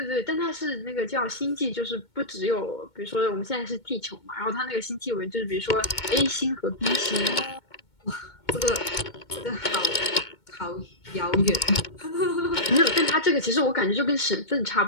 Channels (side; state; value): right; late; 2.2 ms